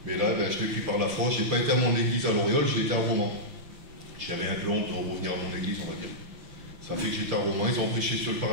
Mais là, ben, je l'ai pris par la foi. Je n'ai pas été à mon église à Loriol, j'ai été à Romans. J'avais un peu honte de revenir à mon église, on va dire. Ça fait que j'étais à Romans, ils ont prêché sur le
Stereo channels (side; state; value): left; late; 6.6 ms